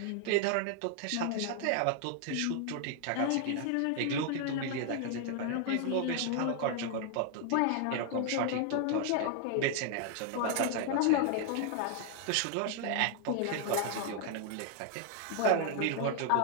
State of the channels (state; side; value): different; both; correlation 0.00